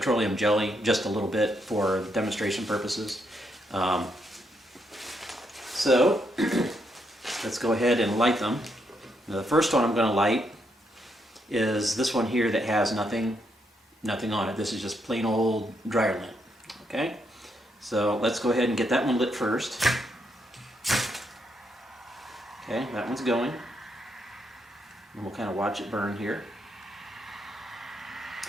jelly, just a little bit for demonstration purposes. So let's go ahead and light them. Now, the first one I'm going to light is this one here that has nothing on it. This is just plain old dryer lint. Okay, so let's go ahead and get that one lit first. Okay, that one's going. And we'll kind of watch it burn here.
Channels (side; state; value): both; normal; correlation 0.78